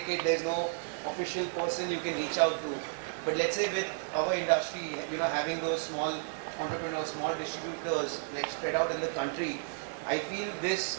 there's no official person you can reach out to. But let's say with our industry, having those small entrepreneurs, small distributors like spread out in the country, I feel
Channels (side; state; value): left; silent; digital silence